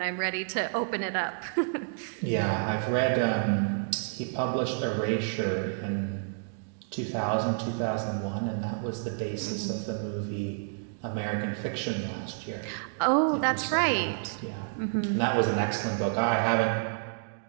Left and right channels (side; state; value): left; silent; digital silence